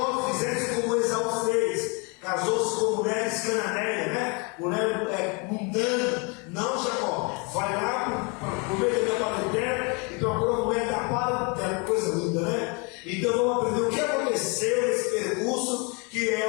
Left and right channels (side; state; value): right; quieter; 32.2 dB